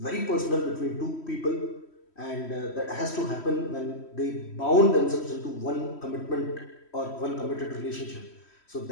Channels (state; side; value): late; right; 3.1 ms